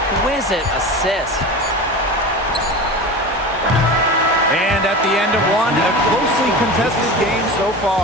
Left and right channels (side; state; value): both; normal; correlation 0.30